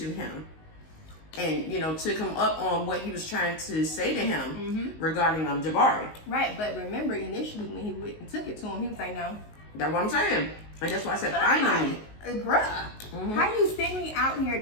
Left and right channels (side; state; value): right; late; 19 ms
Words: him and, you know, took him up on what he was trying to say to him regarding Jabari. Right, but remember, initially when he went and took it to him, he was like, no. That's what I'm saying. And that's why I said finally. Bruh, how you send me out here